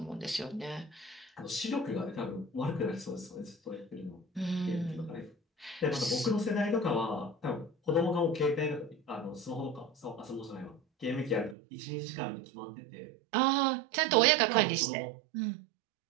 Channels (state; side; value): drops out; left; at 11.6 s